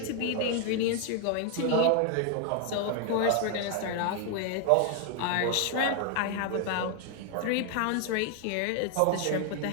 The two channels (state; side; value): different; both; correlation 0.00